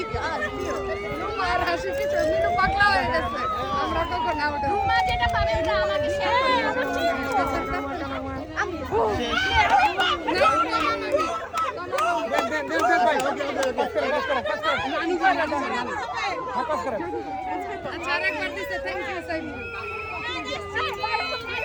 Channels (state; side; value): identical; both; correlation 1.00